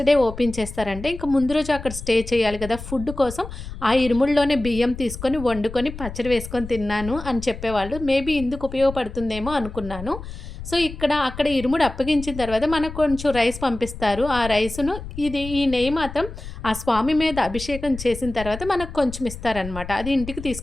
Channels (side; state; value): left; noise; rumble, 11 dB below the sound